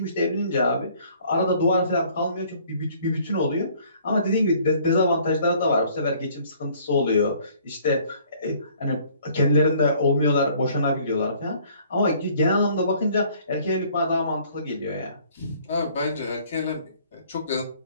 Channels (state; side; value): inverted; both; correlation -0.58